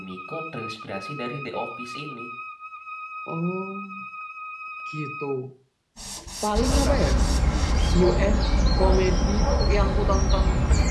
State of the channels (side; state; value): both; identical; correlation 1.00